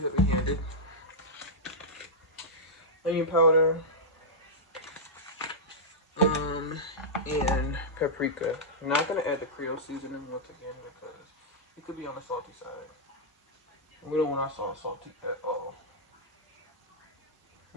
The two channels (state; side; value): normal; both; correlation -0.07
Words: Onion powder. And paprika. I'm not going to add the Creole seasoning once again because it could be on the salty side. We don't want our sauce salty at all.